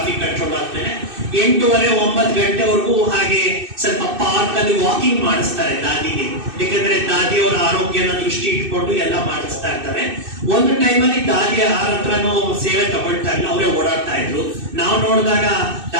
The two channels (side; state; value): left; late; 2.6 ms